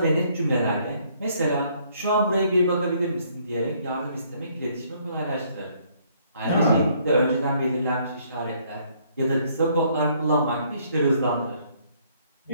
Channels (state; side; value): inverted; both; correlation -0.65